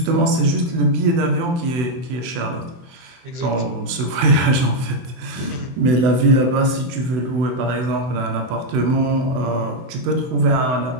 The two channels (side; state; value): left; late; 23 ms